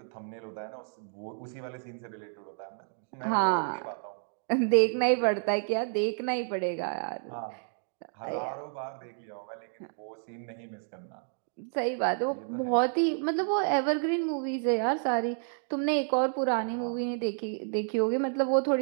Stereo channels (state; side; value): silent; left; digital silence